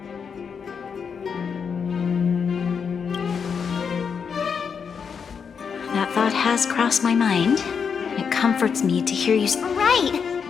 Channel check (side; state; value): right; quieter; 6.4 dB